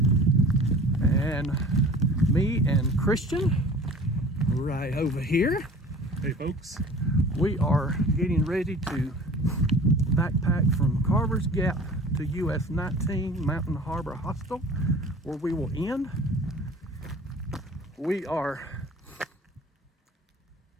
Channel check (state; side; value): normal; both; correlation 0.44